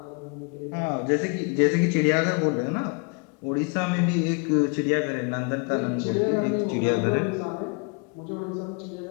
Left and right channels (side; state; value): right; quieter; 33.7 dB